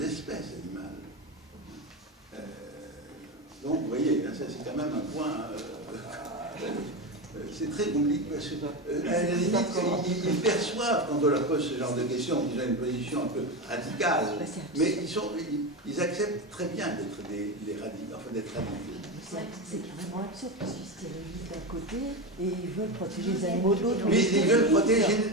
espèces animales. Donc, vous voyez, ça c'est quand même un point... c'est très compliqué parce que, à la limite, ils perçoivent quand on leur pose ce genre de questions, qu'ils ont une position un peu radicale, mais ils acceptent très bien d'être radicaux. C'est carrément absurde parce qu'ils stérilisent d'un côté et ils veulent protéger les animaux de l'autre. Oui, ils veulent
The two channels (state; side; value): normal; both; correlation 0.18